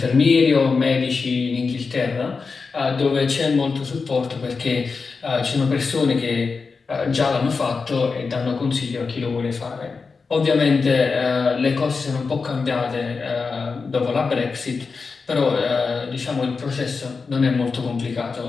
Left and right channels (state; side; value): quieter; right; 4.7 dB